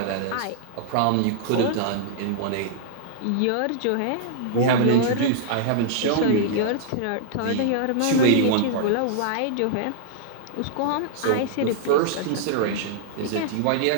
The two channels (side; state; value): both; different; correlation -0.01